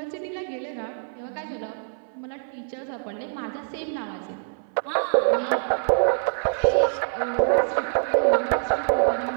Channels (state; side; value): silent; left; 61 dB below the other